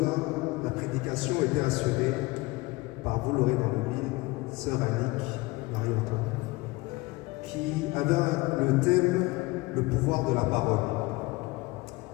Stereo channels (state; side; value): quieter; right; 22.4 dB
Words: la prédication était assurée par, vous l'aurez dans le mille, sœur Annick, Marie-Antoine, qui avait le thème « Le pouvoir de la parole